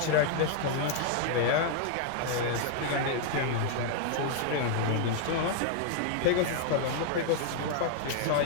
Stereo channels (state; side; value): different; both; correlation 0.00